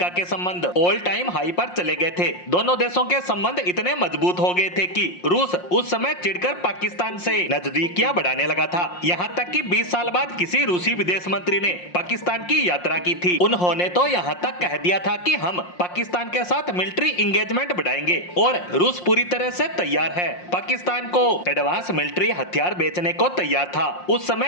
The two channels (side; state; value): right; late; 5.6 ms